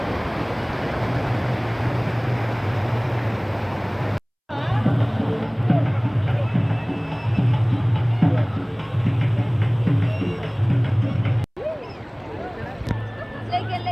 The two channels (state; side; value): identical; both; correlation 1.00